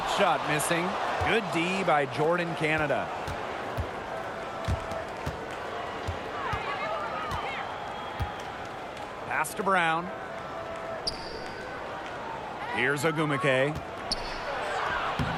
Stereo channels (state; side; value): identical; both; correlation 1.00